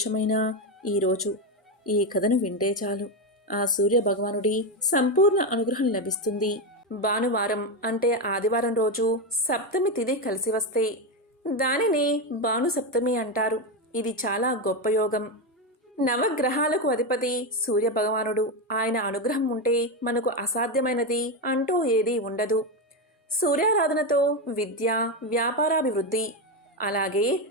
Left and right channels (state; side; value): normal; both; correlation 0.10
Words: ఈరోజు ఈ కథను వింటే చాలు ఆ సూర్య భగవానుడి సంపూర్ణ అనుగ్రహం లభిస్తుంది. భానువారం అంటే ఆదివారం రోజు సప్తమి తిథి కలిసి వస్తే దానిని భాను సప్తమి అంటారు. ఇది చాలా గొప్ప యోగం. నవగ్రహాలకు అధిపతి సూర్య భగవానుడు. ఆయన అనుగ్రహం ఉంటే మనకు అసాధ్యమైనది అంటూ ఏదీ ఉండదు. సూర్యారాధనతో విద్య, వ్యాపారాభివృద్ధి, అలాగే